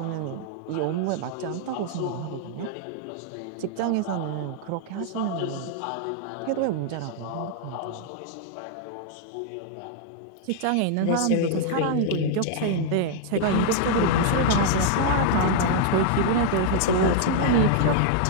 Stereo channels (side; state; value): both; different; correlation 0.00